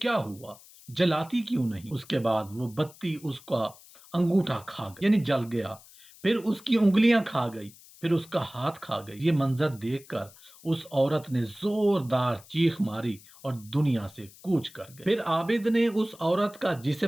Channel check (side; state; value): left; noise; hiss, 22 dB below the sound